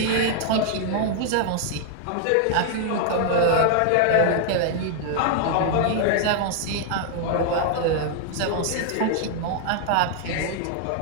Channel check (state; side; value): different; both; correlation 0.00